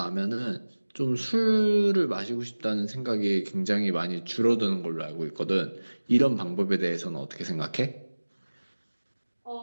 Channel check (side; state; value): both; inverted; correlation -1.00